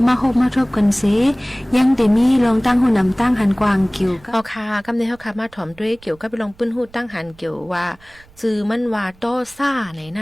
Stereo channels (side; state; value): right; noise; rumble, 26 dB below the sound